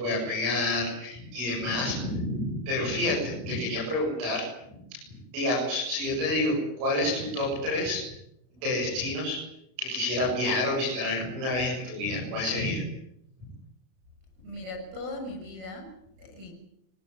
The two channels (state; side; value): late; left; 32 ms